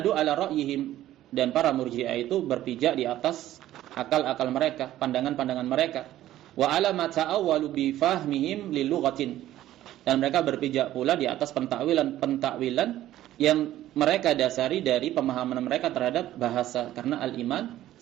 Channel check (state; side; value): quieter; left; 13.7 dB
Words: ala ra'yihim, dan para murji'ah itu berpijak di atas akal-akal mereka, pandangan-pandangan mereka. Wa ala ma ta'awwalu bi fahmihim lil lughatin, dan mereka berpijak pula di atas pentakwilan yang mereka dasari dari pemahaman mereka terhadap bahasa. Karena al-iman